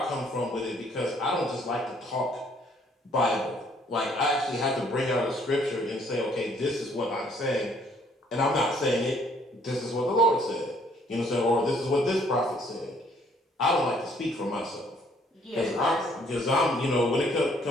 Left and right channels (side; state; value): both; normal; correlation 0.63